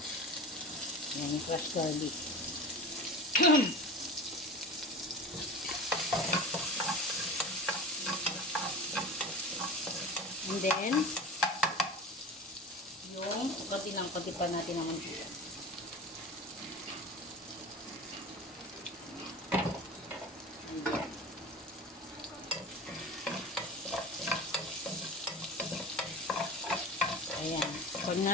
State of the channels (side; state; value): both; normal; correlation 0.32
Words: Ayan, yung fresh garlic. And then, yung konti pa natin ng mantika. Ayan. Pag